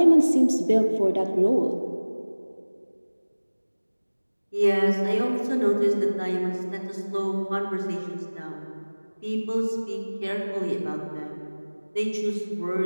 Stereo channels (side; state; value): both; inverted; correlation -1.00